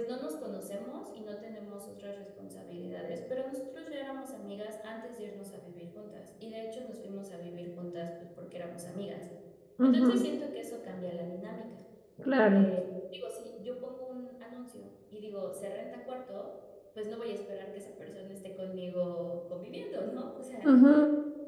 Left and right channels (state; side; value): identical; both; correlation 1.00